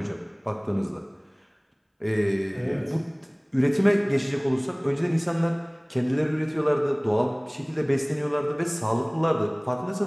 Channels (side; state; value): both; identical; correlation 1.00